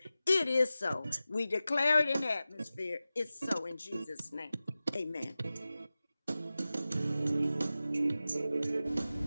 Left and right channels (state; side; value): inverted; both; correlation -0.95